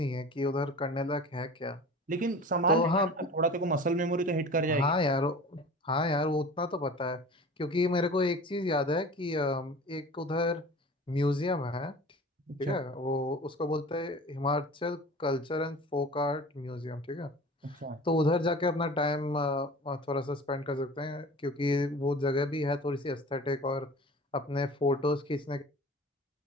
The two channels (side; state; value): both; normal; correlation 0.40